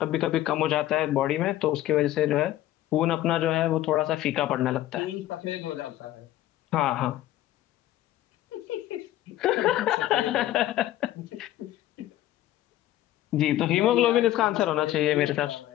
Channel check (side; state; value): right; quieter; 14.0 dB